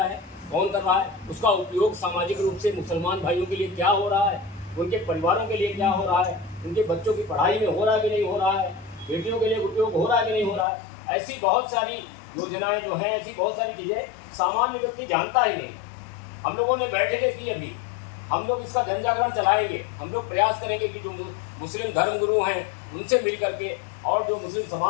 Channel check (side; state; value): right; drops out; at 10.7 s